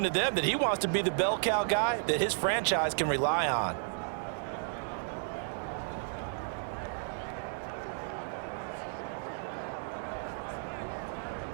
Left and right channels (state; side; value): silent; left; 56 dB below the other